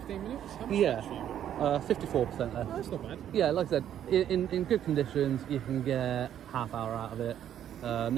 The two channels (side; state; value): left; quieter; 10.4 dB